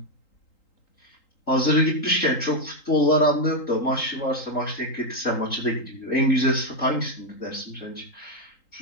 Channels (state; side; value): late; right; 3.8 ms